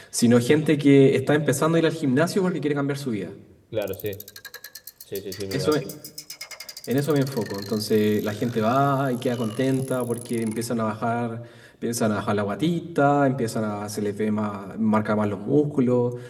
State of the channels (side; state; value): both; identical; correlation 1.00